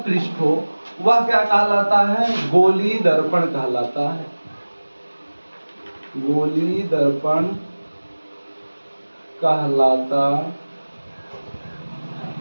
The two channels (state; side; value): inverted; both; correlation -1.00